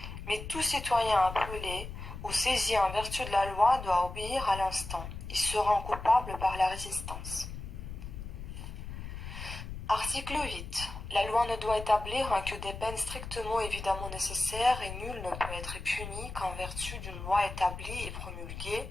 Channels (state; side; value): noise; left; rumble, 9 dB below the sound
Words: Mais tout citoyen appelé ou saisi en vertu de la loi doit obéir à l'instant. Il se rend coupable par la résistance. Article 8. La loi ne doit établir que des peines strictement évidemment nécessaires et nul ne peut être puni qu'en vertu d'une loi établie et promulguée